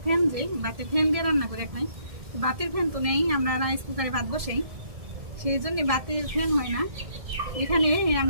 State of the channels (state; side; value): late; left; 1.7 ms